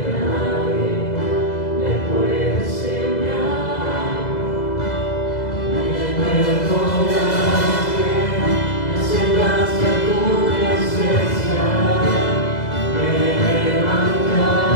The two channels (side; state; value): right; late; 2.0 ms